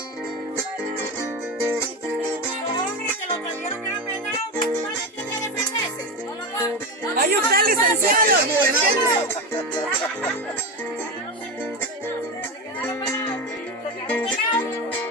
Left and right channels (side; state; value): both; normal; correlation 0.18